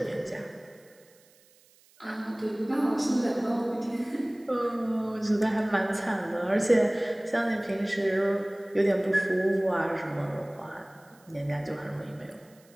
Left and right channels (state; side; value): noise; right; hiss, 30 dB below the sound